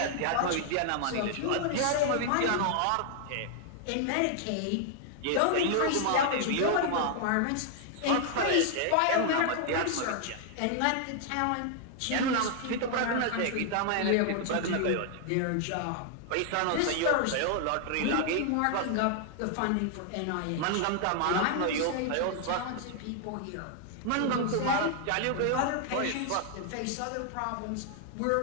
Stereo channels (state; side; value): different; both; correlation 0.00